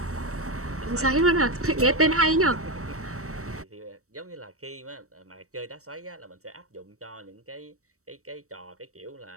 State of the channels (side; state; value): left; late; 0.65 ms